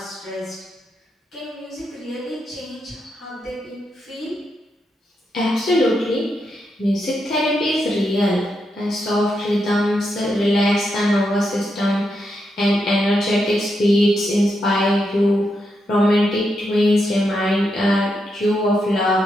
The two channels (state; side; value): normal; both; correlation 0.83